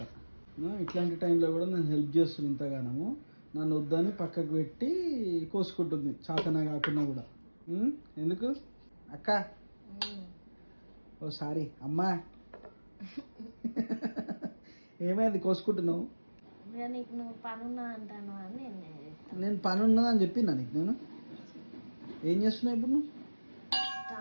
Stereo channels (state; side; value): inverted; both; correlation -1.00